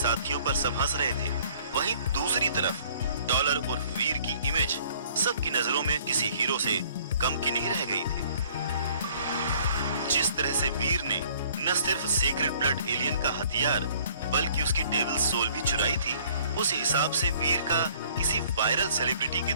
पर सब हंस रहे थे, वहीं दूसरी तरफ डॉलर और वीर की इमेज सबकी नजरों में किसी हीरो से कम की नहीं रह गई थी। जिस तरह से वीर ने न सिर्फ सेक्रेड ब्लड एलियन का हथियार बल्कि उसकी डेविल सोल भी चुराई थी, उस हिसाब से वीर का किसी वायरल सेलिब्रिटी की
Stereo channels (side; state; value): both; inverted; correlation -0.57